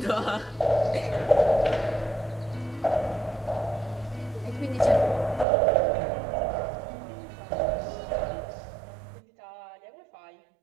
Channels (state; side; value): drops out; left; at 5.5 s